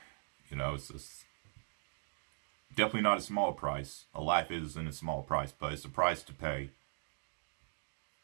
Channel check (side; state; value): left; silent; digital silence